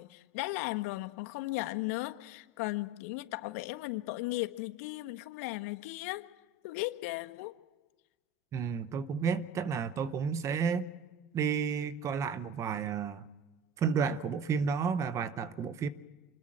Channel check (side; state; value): both; normal; correlation 0.33